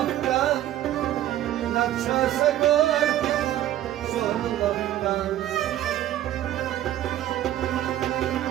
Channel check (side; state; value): left; quieter; 13.0 dB